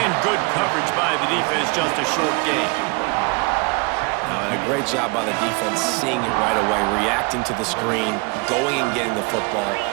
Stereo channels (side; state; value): left; quieter; 29.5 dB